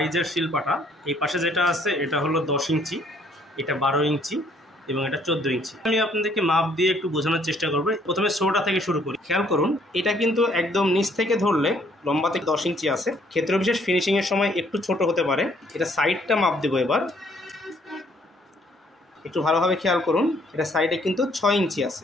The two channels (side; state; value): both; normal; correlation 0.64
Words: শিল পাটা। এই পাশে যেটা আছে এটা হলো 10 ইঞ্চি, এটা 12 ইঞ্চি এবং এটা 14 ইঞ্চি। আমি আপনাদেরকে মাপ দিয়ে একটু বোঝানোর চেষ্টা করব। প্রথমে ছোটটা থেকে শুরু করি। খেয়াল করুন, এটা কিন্তু একদম নিচ থেকে ধরলে লম্বা থেকে 10 ইঞ্চি আছে। ক্ষেত্র বিশেষ ফিনিশিংয়ের সময় একটু ছোট হতে পারে। এটা সাইডটা মাপ দেবো এবার, একটু ভালোভাবে খেয়াল করুন। এটা সাইডে কিন্তু 6 ইঞ্চি আছে